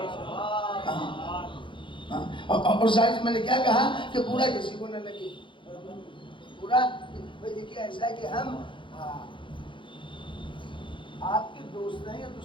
اور ظاہر میں نے کیا کہا کہ پورا کسی کو نہ لگے، پورا دیکھیے ایسا ہے کہ ہم آپ کے دوست ہیں یا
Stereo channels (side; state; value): right; late; 0.24 ms